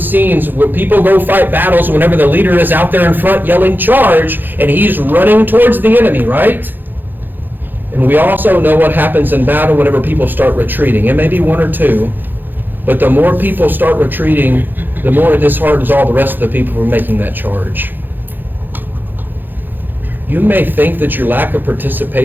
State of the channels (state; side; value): late; left; 0.091 ms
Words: scenes where people go fight battles, whenever the leader is out there in front yelling charge, and he's running towards the enemy, right? And we also know what happens in battle whenever people start retreating. It may be one or two, but the more people start retreating, the more it disheartens all the rest of the people from making that charge. You may think that your lack of